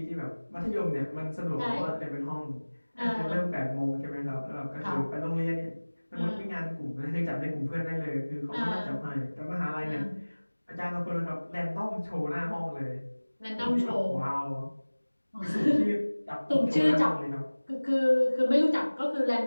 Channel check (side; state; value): both; inverted; correlation -1.00